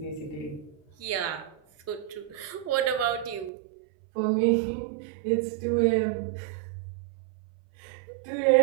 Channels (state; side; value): drops out; left; at 3.5 s